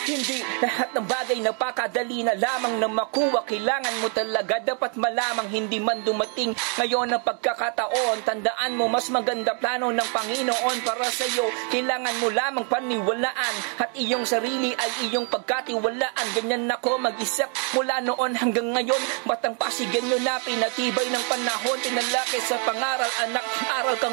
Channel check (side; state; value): left; quieter; 39.8 dB